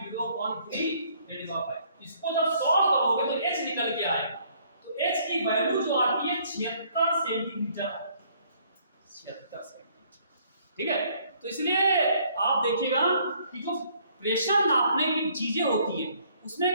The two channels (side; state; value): both; inverted; correlation -0.63